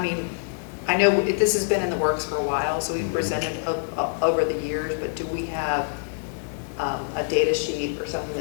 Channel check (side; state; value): right; silent; digital silence